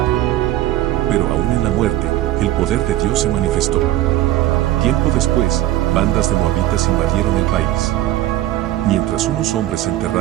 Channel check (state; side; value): quieter; left; 14.7 dB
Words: Pero aún en la muerte, el poder de Dios se manifestó. Tiempo después, bandas de moabitas invadieron el país. Mientras unos hombres